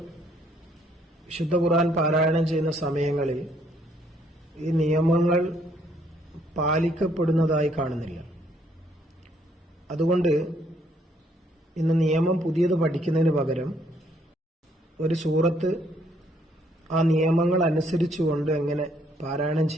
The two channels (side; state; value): both; normal; correlation 0.68